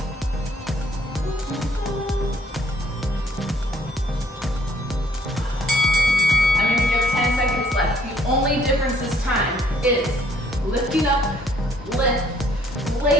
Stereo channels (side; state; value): both; normal; correlation 0.64